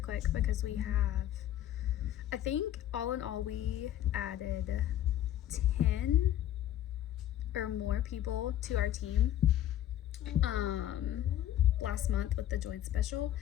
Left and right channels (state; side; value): quieter; right; 12.1 dB